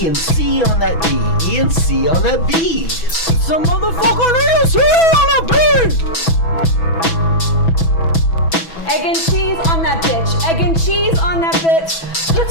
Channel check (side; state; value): right; late; 6.1 ms